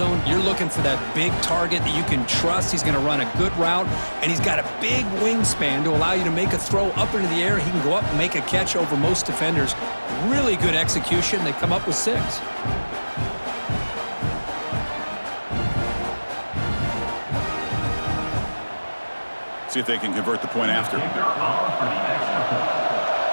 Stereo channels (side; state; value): both; inverted; correlation -1.00